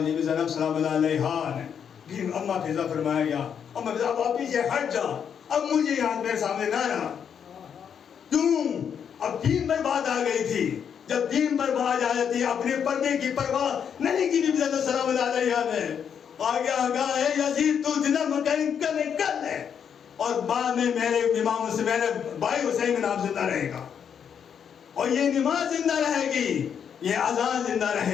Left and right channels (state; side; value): quieter; right; 7.8 dB